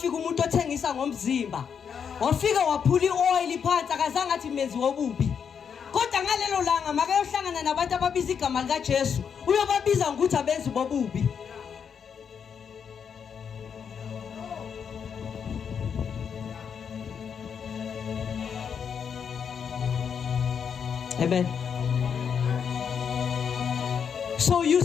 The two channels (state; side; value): quieter; right; 7.1 dB